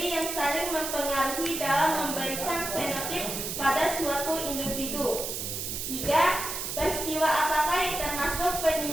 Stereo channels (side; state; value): right; noise; hiss, 4 dB below the sound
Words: yang saling mempengaruhi dalam memberikan fenotip pada suatu individu. 3. Peristiwa apakah yang termasuk